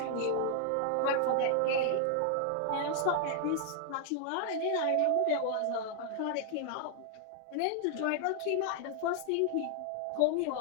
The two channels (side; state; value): both; different; correlation 0.00